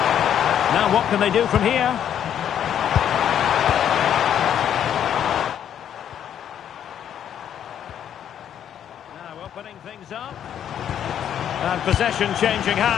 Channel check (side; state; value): right; quieter; 9.6 dB